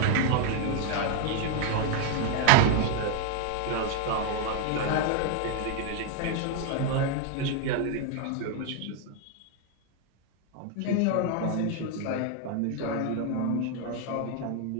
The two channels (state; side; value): different; both; correlation 0.00